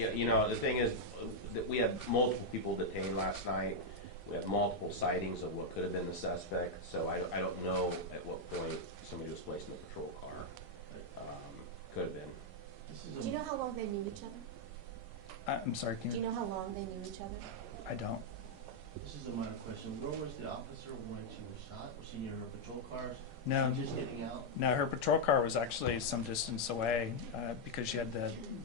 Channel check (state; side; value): normal; both; correlation -0.02